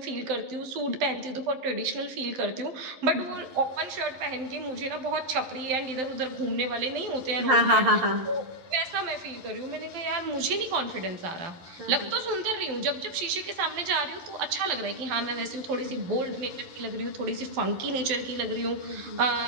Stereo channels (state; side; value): late; left; 11 ms